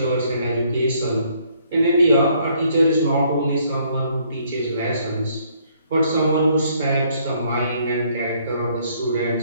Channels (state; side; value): inverted; both; correlation -0.66